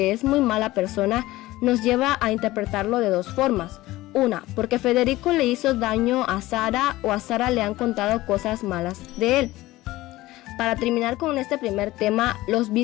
es muy mala persona nos lleva a interpretarlo de dos formas. Una, porque Federico le hizo daño a Sara o a Sara le han contado cosas malas de él. Para terminar con este primer tema, los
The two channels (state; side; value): quieter; right; 17.7 dB